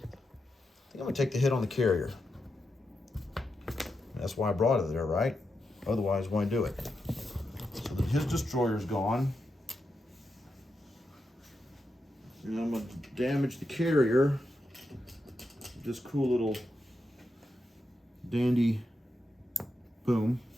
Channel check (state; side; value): normal; both; correlation 0.87